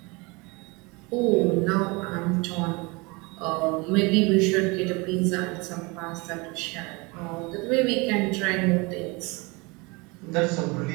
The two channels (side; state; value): left; quieter; 26.8 dB